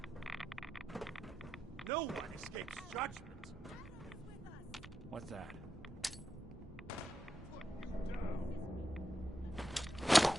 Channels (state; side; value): normal; both; correlation 0.87